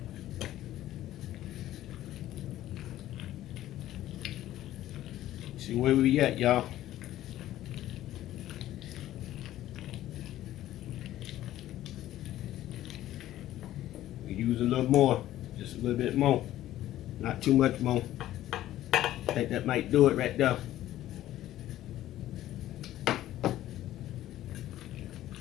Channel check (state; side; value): quieter; right; 13.8 dB